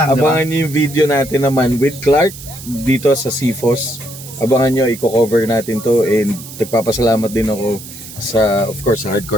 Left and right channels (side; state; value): right; noise; hiss, 14 dB below the sound